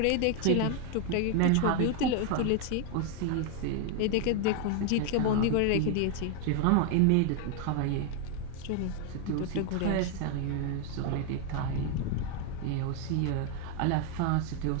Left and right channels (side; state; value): both; different; correlation 0.01